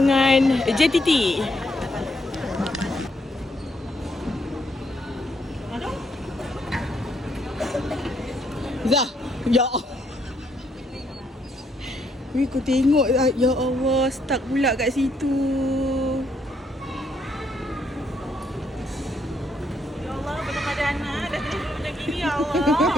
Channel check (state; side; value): normal; both; correlation 0.73